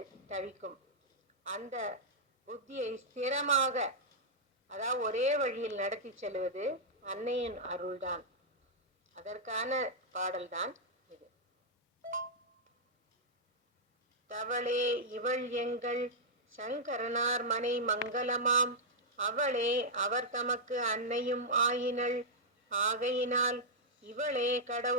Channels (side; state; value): both; normal; correlation -0.07